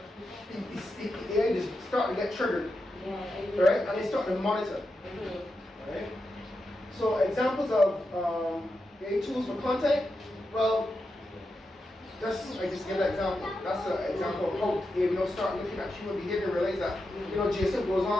the AI just start to get triggered. Right? And they start to monitor. Right? So examples of AI tools for content. Well, I just give an example. That's an example of how AI start looking at human behavior and realize that Jason goes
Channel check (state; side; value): normal; both; correlation 0.88